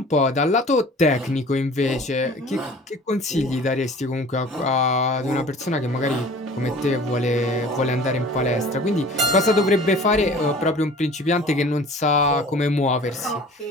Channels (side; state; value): both; normal; correlation 0.45